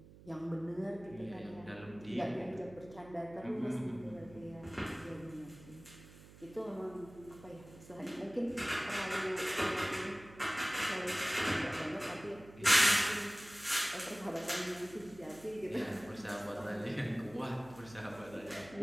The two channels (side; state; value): right; noise; hum, 19 dB below the sound